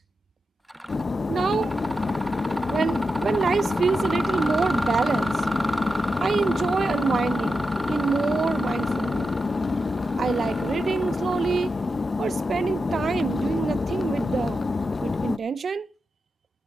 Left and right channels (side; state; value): both; normal; correlation 0.88